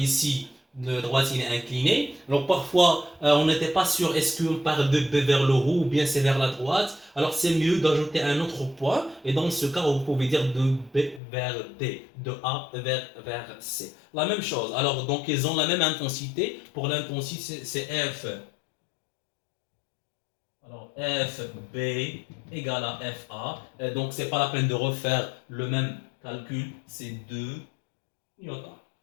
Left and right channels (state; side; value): drops out; right; at 11.2 s